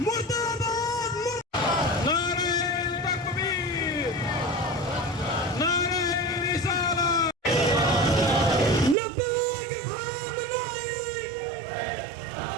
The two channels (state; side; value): drops out; left; at 9.0 s